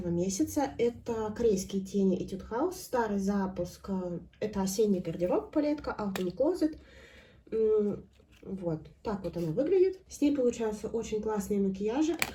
месяца. Это корейские тени Etude House. Старый запуск. Это осенний гардероб палетка Autumn Closet. Вот, так вот она выглядит. С ней получаются очень классные макияжи.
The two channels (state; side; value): identical; both; correlation 1.00